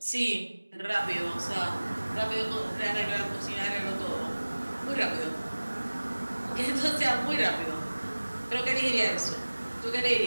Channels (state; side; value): inverted; both; correlation -1.00